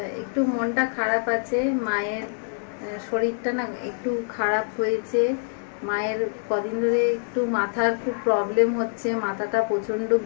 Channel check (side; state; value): right; silent; digital silence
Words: একটু মনটা খারাপ আছে, মায়ের শরীরটা না একটু খারাপ হয়েছে। মায়ের কদিন ধরে একটু মাথার খুব প্রবলেম হচ্ছে, মাথাটা প্রচণ্ড